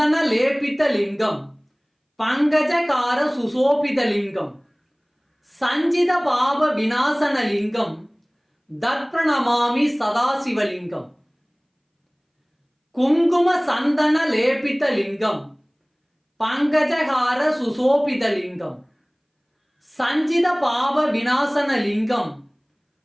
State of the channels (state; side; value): identical; both; correlation 1.00